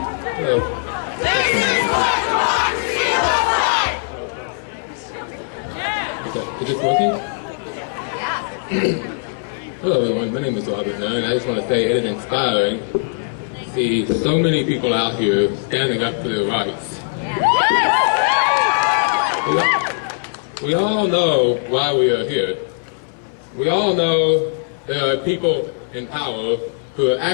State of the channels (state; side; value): silent; right; 62 dB below the other